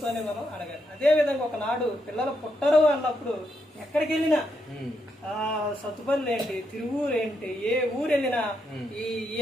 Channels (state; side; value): normal; both; correlation 0.80